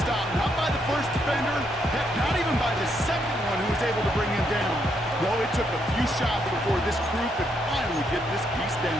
not by the first defender, heck, not even by the second one who was able to bring him down. No, it took a few shots before this crew could finally get this piece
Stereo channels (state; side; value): normal; both; correlation 0.76